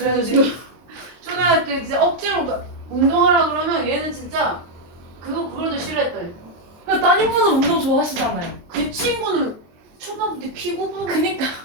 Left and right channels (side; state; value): left; late; 23 ms